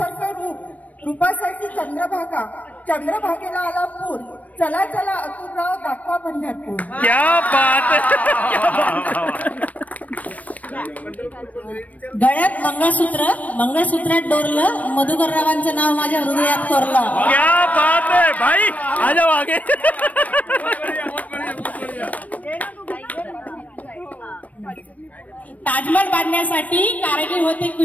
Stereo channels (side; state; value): right; late; 0.071 ms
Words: रूपासाठी चंद्रभागेला आला पूर. चला अतुलराव दाखवा पंढरपूर. क्या बात. गळ्यात मंगळसूत्रात डोरलं, मधुकररावांचं नाव माझ्या हृदयात कोरलं. क्या बात है भाई, आ जाओ आगे. ताजमहल बांधण्यासाठी कारागीर होते